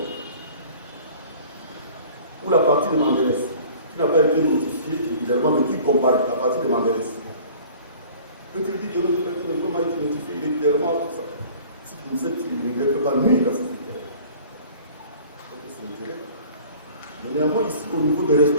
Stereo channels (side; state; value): both; inverted; correlation -0.47